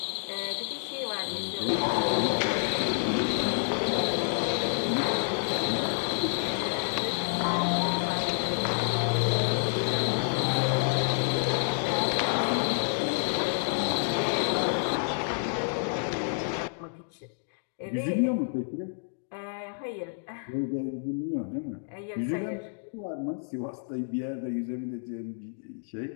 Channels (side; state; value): right; silent; digital silence